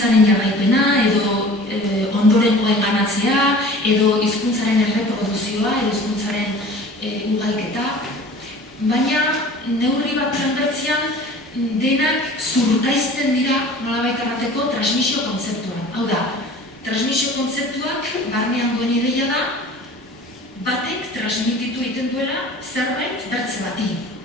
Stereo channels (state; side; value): normal; both; correlation 0.43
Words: jarraipena, edo ondorengoen banatzea, edo hizkuntzaren erreproduzioa, edo hizkuntzaren ugalketa. Baina, neurri bat bertzean, denak zurkaizten dira nolabait errateko transmisio kontzeptuan. Hau da, transmisio kontzeptuak barnean duen ideia da, batek transmititu egiten duela zerbait bertze bati.